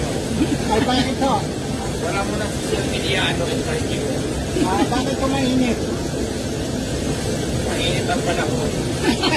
Ay, bakit ito? Wala mo na social media interview. Bakit ko mainit? Mainit ang panahon.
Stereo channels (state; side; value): identical; both; correlation 1.00